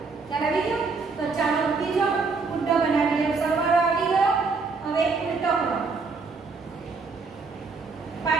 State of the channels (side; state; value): left; quieter; 4.4 dB